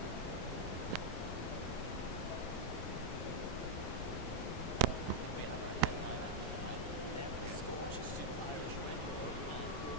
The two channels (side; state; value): both; normal; correlation -0.01